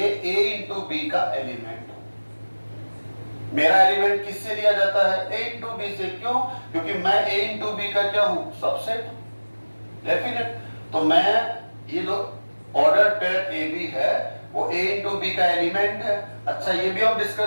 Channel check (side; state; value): both; inverted; correlation -1.00